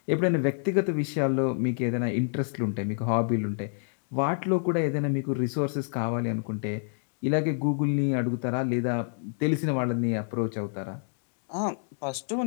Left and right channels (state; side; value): silent; right; digital silence